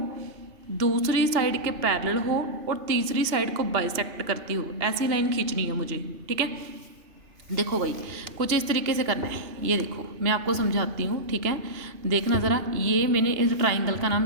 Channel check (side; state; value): left; late; 2.8 ms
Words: दूसरी साइड के पैरेलल हो और तीसरी साइड को बाइसेक्ट करती हो, ऐसी लाइन खींचनी है मुझे, ठीक है। देखो भाई कुछ इस तरीके से करना है, ये देखो मैं आपको समझाती हूँ, ठीक है, देखना ज़रा। ये मैंने इस ट्राइंगल का नाम